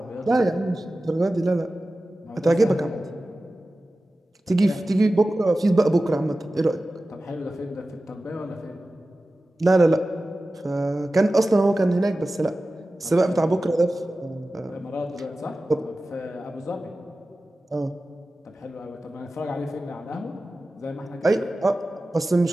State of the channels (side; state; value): both; normal; correlation 0.95